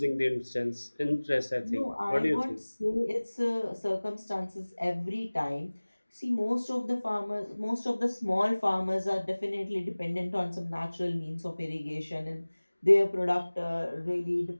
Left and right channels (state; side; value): inverted; both; correlation -1.00